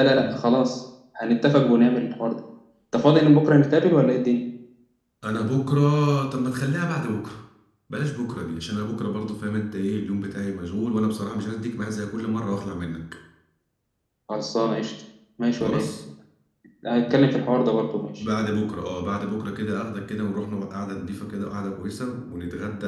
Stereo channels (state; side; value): identical; both; correlation 1.00